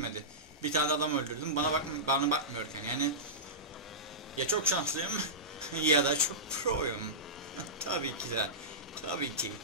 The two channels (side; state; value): both; normal; correlation -0.18